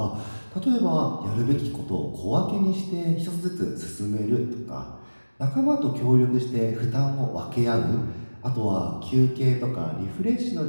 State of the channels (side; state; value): both; inverted; correlation -1.00